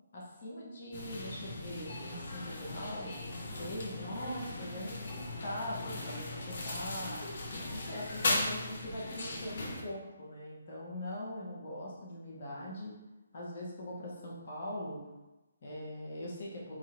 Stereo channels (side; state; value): both; inverted; correlation -0.75